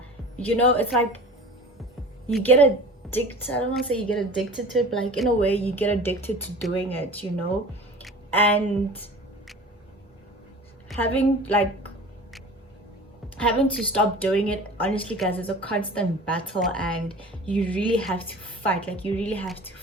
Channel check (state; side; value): normal; both; correlation 0.39